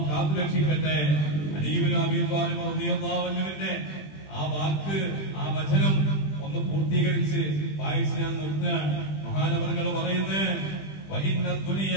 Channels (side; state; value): right; late; 20 ms